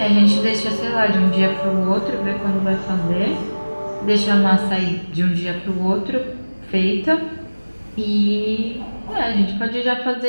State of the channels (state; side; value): inverted; both; correlation -1.00